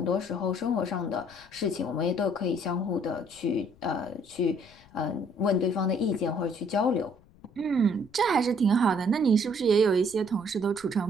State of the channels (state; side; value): noise; left; rumble, 27 dB below the sound